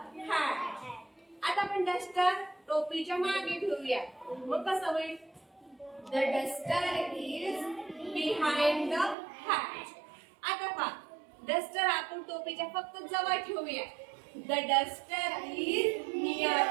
hat. आता आपण डस्टर टोपीच्या मागे ठेवूया. मग कसं होईल? The duster is behind the hat. आता पहा, डस्टर आपण टोपीच्या फक्त जवळ ठेवूया. The duster is near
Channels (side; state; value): left; drops out; at 9.2 s